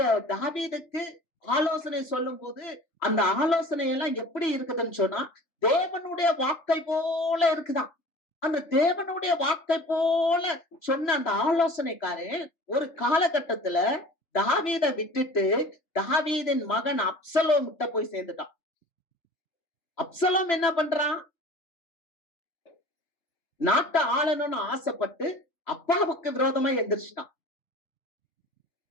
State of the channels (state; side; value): late; right; 3.3 ms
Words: தாவீதுக்கு ஆலோசனை சொல்லும் போது, அந்த ஆலோசனை எல்லாம் எப்படி இருக்குதுன்னு சொன்னா, தேவனுடைய வாக்கை போல இருக்குதாம். அந்த தேவனுடைய வாக்கை போல சொன்ன அந்த ஆலோசனைக்காரன் ஒரு காலகட்டத்துல தாவீதை விட்டுட்டு தாவீதின் மகன் அப்சலோம் கிட்ட போய் சேர்ந்துட்டான். அப்சலோம் என்ன பண்றான், நாட்டை ஆளணும்னு ஆசைப்பட்டு அப்பாவுக்கு விரோதமா எந்திரிச்சிட்டான்.